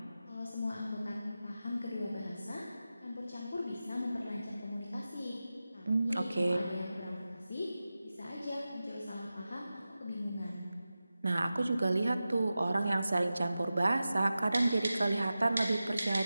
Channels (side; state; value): both; inverted; correlation -0.94